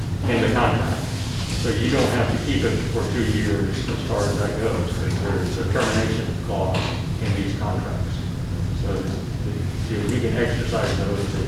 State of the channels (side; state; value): both; identical; correlation 1.00